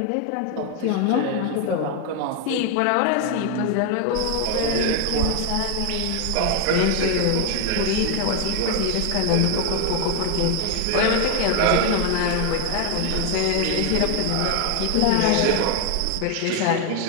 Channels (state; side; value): different; both; correlation 0.01